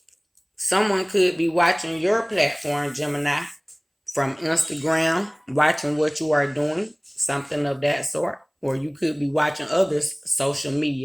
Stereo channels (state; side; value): identical; both; correlation 1.00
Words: Someone could be watching your platform, Gemini, from Instagram, watching what you are doing, something of that sort. Or you could be watching others' social